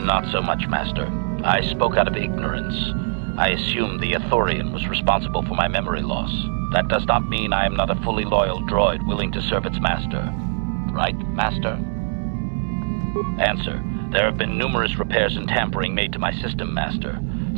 so much, Master. I spoke out of ignorance. I assumed the Ithorian was responsible for my memory loss. That does not mean I am not a fully loyal droid willing to serve its master. Right, Master? Answer. There have been numerous repairs and tampering made to my system, Master.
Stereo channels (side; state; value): left; silent; 64 dB below the other